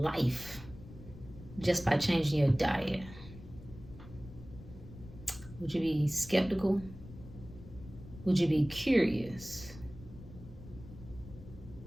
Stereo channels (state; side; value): noise; left; rumble, 16 dB below the sound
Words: just by changing your diet, would you be skeptical? Would you be curious?